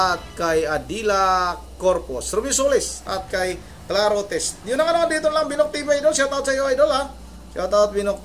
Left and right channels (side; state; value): both; identical; correlation 1.00